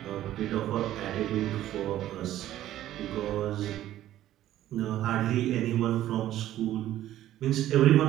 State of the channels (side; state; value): left; quieter; 13.2 dB